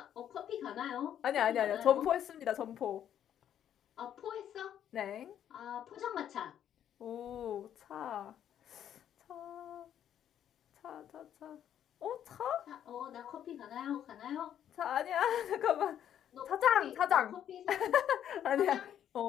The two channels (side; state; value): right; quieter; 10.1 dB